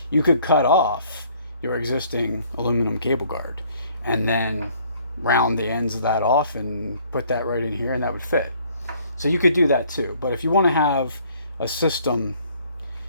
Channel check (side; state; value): both; inverted; correlation -0.60